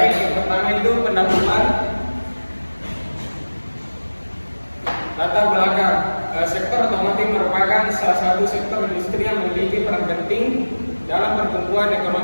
yang pertama itu pendahuluan. Latar belakang, sektor otomotif merupakan salah satu sektor industri yang memiliki peran penting dalam pertumbuhan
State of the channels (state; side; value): inverted; both; correlation -1.00